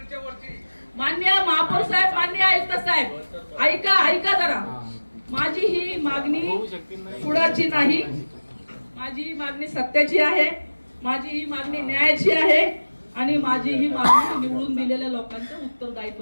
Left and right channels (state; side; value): inverted; both; correlation -1.00